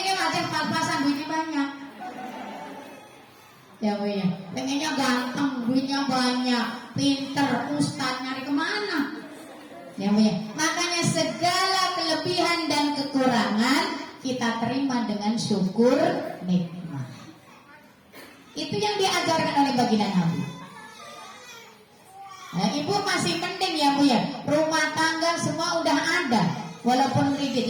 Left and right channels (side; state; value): both; identical; correlation 1.00